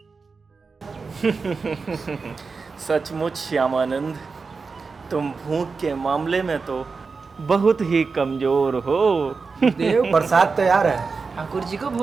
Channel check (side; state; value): left; quieter; 4.6 dB